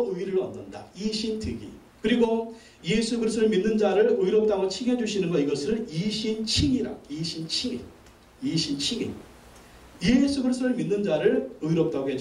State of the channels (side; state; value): both; identical; correlation 1.00